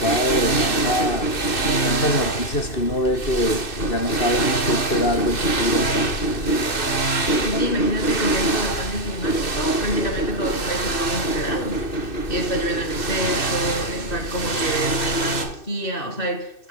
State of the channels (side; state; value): right; late; 2.6 ms